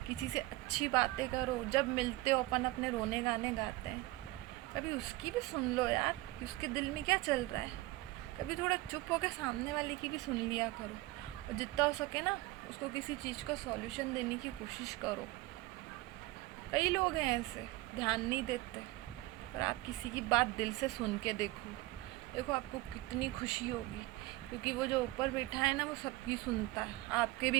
किसी से अच्छी बातें करो। जब मिलते हो अपन अपने रोने गाने गाते हैं, कभी उसकी भी सुन लो यार कि उसके दिल में क्या चल रहा है। कभी थोड़ा चुप होकर सामने वाले की भी सुन लिया करो, और जितना हो सके ना उसको किसी चीज़ का सॉल्यूशन देने की कोशिश करो। कई लोग हैं ऐसे, ध्यान नहीं देते, पर आप किसी की बात दिल से सुन के देखो आपको कितनी खुशी होगी, क्योंकि वो जो ऊपर बैठा है ना, वो सबकी सुनता है। आपके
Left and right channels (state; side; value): quieter; left; 19.4 dB